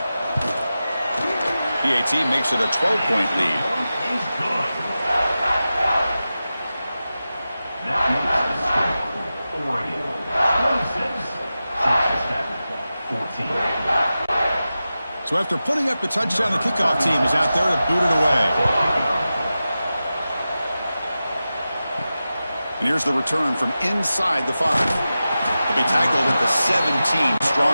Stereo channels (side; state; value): both; inverted; correlation -0.93